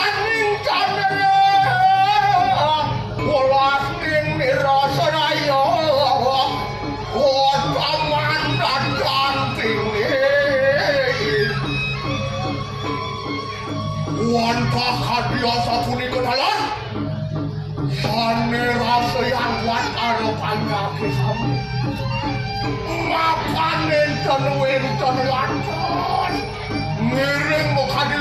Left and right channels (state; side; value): identical; both; correlation 1.00